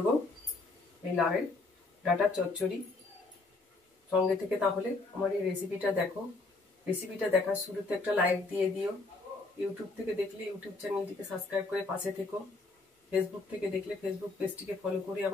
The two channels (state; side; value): quieter; right; 3.5 dB